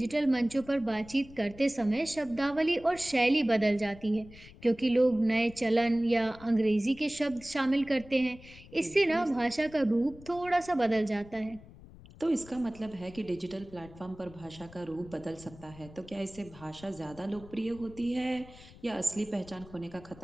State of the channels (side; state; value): left; noise; rumble, 20 dB below the sound